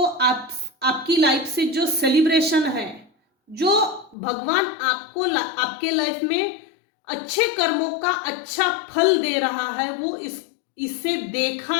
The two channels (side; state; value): right; drops out; at 4.2 s